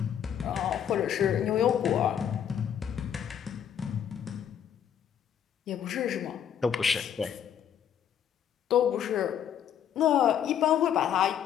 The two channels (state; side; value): quieter; right; 9.0 dB